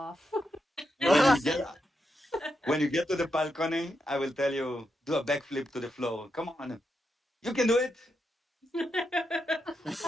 When you get when you get to the balcony, I will tell you do a backflip to the floor. Come on, you can do it.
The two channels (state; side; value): normal; both; correlation 0.85